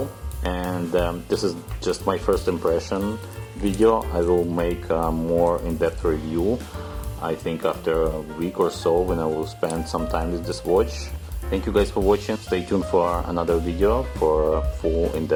And this is just my first impression video. I will make a more in-depth review, I think after a week or so, when I will spend some time with this watch. Thank you guys for watching. Stay tuned for another video for a full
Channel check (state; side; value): identical; both; correlation 1.00